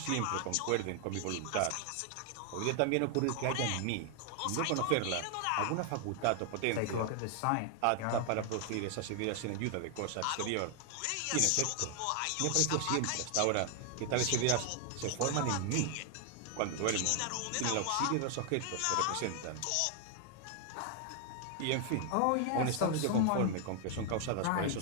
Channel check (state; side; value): different; both; correlation 0.00